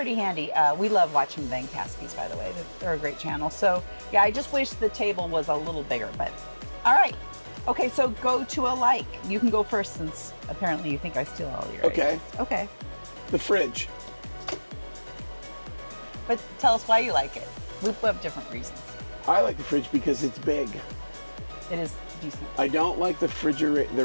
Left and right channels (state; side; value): inverted; both; correlation -1.00